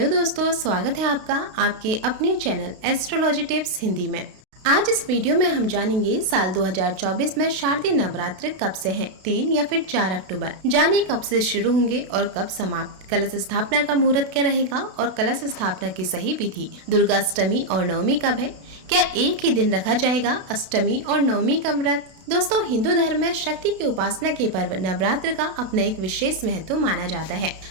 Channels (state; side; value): late; left; 32 ms